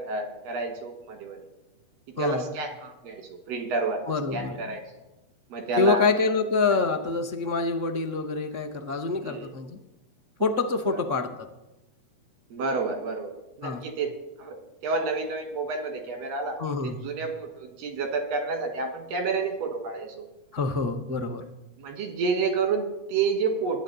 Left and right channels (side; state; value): left; late; 8.1 ms